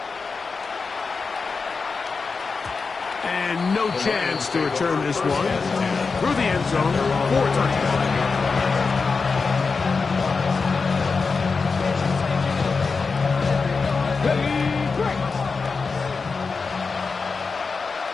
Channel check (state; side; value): quieter; right; 4.7 dB